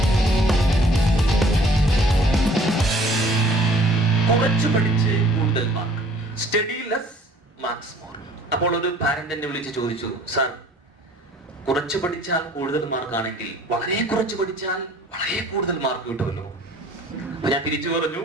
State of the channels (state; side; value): normal; both; correlation 0.54